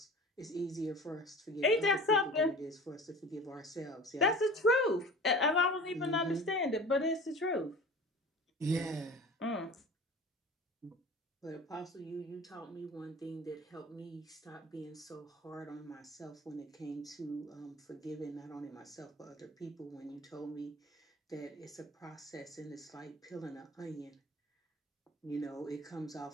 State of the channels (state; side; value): normal; both; correlation 0.40